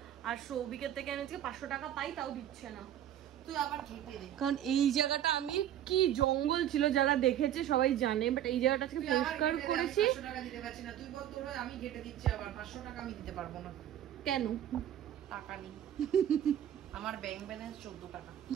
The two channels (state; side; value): quieter; left; 11.2 dB